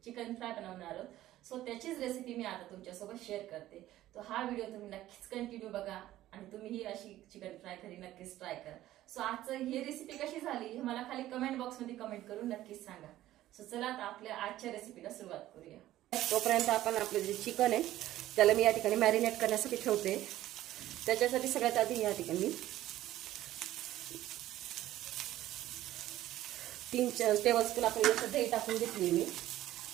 चिकन फ्राय बनवणार आहोत. सो त्याचीच रेसिपी मी आता तुमच्यासोबत शेअर करते. तो हा व्हिडिओ तुम्ही नक्कीच कंटिन्यू बघा आणि तुम्हीही अशी चिकन फ्राय घरी नक्कीच ट्राय करा. सो आजचं ही रेसिपी कशी झाली हे मला खाली कमेंट बॉक्समध्ये कमेंट करून नक्कीच सांगा. सो चला आता आपल्या आजच्या रेसिपीला सुरुवात करूया. तोपर्यंत आपण आपलं जे चिकन आहे त्याला मी या ठिकाणी मॅरिनेट करण्यासाठी ठेवते. त्याच्यासाठी सगळ्यात आधी या ठिकाणी 3 टेबलस्पून आपण याच्यात दही टाकून घेतली मी.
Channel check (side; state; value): left; quieter; 14.4 dB